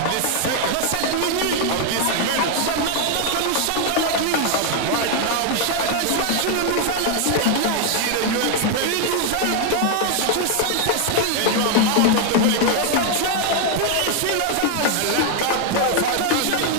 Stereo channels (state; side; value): different; both; correlation 0.00